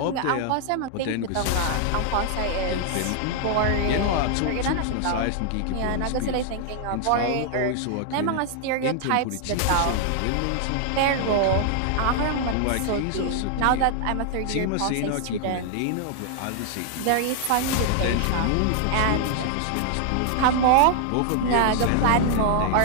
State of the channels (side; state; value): both; different; correlation 0.00